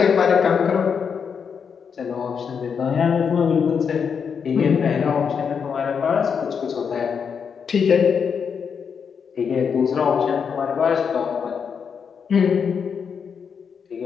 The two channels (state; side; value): quieter; right; 6.6 dB